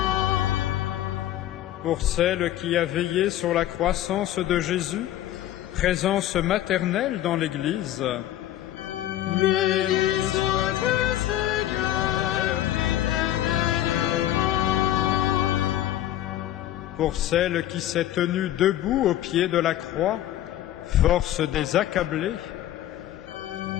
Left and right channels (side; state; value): right; quieter; 13.0 dB